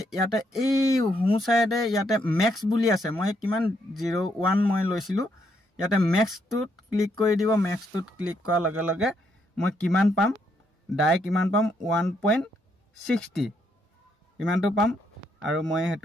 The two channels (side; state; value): both; normal; correlation 0.75